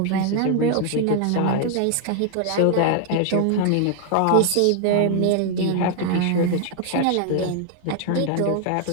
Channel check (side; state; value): both; different; correlation 0.00